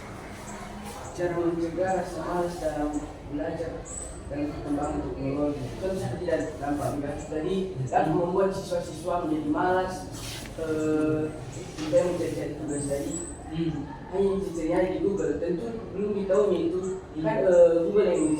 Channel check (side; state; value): both; identical; correlation 1.00